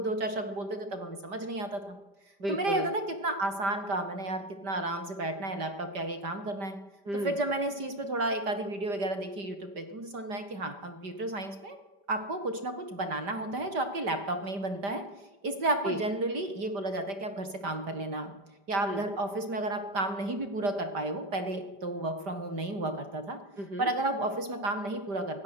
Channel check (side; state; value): left; late; 5.0 ms